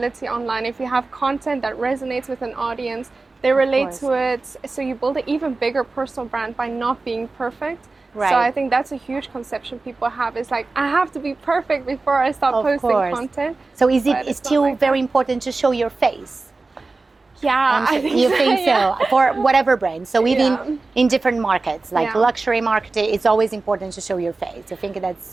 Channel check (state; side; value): quieter; left; 3.6 dB